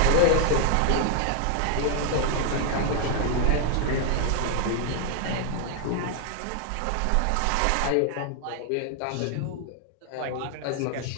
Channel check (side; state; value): both; different; correlation 0.00